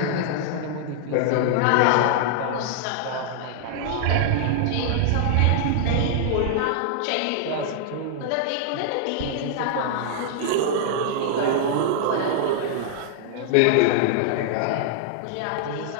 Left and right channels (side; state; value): both; different; correlation -0.01